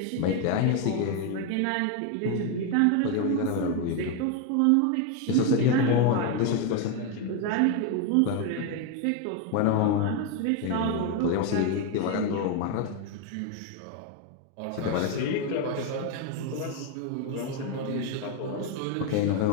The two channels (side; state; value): both; different; correlation 0.01